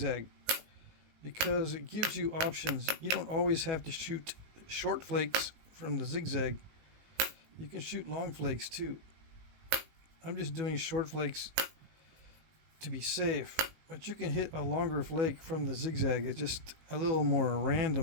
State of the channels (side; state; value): left; late; 18 ms